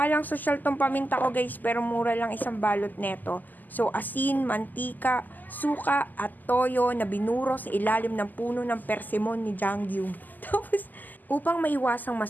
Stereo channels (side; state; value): right; late; 0.085 ms